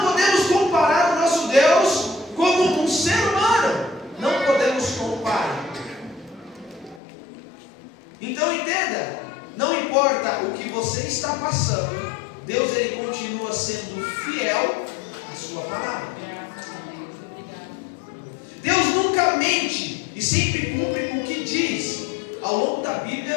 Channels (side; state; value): right; drops out; at 7.0 s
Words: podemos comparar o nosso Deus como um ser humano. Não podemos comparar. Então entenda, não importa o que você está passando, Deus ele continua sendo fiel à sua palavra. Deus nunca mente e sempre cumpre o que diz. Ao longo da